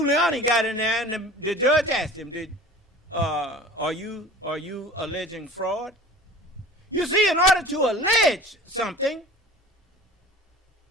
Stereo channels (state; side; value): normal; both; correlation 0.41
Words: got in there, and the judge asked him, are you alleging fraud? You see, in order to allege something,